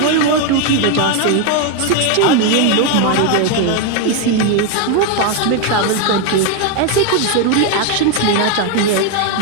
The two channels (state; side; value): different; both; correlation 0.01